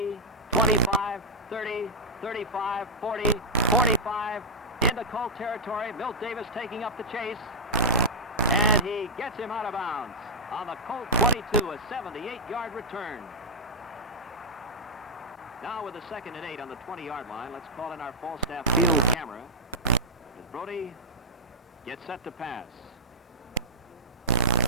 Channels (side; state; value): both; normal; correlation -0.13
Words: 25, 30, 35, 40, 45, into Colt territory. Milt Davis taking up the chase, and he gets him out of bounds on the Colt 22, a 78-yard return. Now with a 2nd and 8 on the 20-yard line, let's call in our Falstaff field camera as Brody gets set to pass.